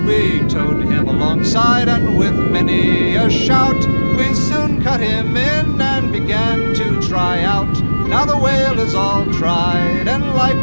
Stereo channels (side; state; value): both; inverted; correlation -1.00